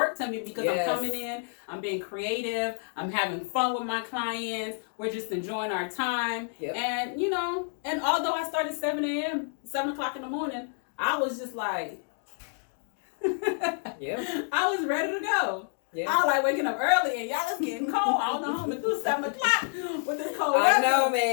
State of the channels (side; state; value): right; silent; 59 dB below the other